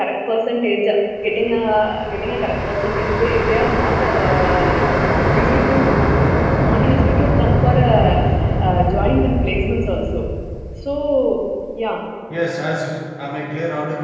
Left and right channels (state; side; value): identical; both; correlation 1.00